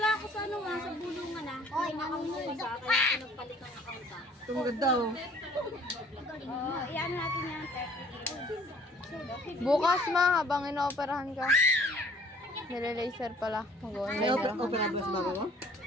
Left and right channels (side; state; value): both; normal; correlation 0.55